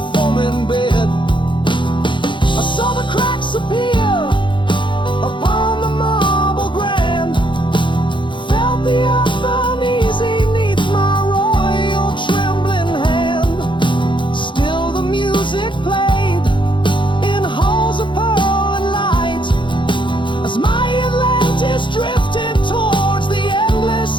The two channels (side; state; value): right; late; 0.23 ms